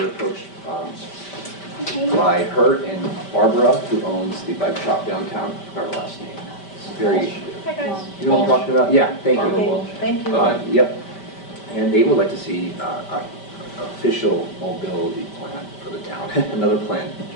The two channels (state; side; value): late; right; 5.1 ms